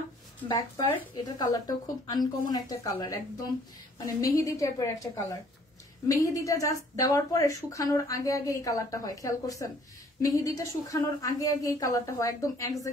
ব্যাক পার্ট, এটার কালারটাও খুব আনকমন একটা কালার, একদম মানে মেহেদি টাইপের একটা কালার। মেহেদিটা জাস্ট দেওয়ার পরে শুকানোর আগে আগে এই কালারটা হয়, খেয়াল করছেন? মেহেদিটা শুকানোর আগে আগে এই কালারটা হয়, একদম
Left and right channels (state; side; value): normal; both; correlation 0.59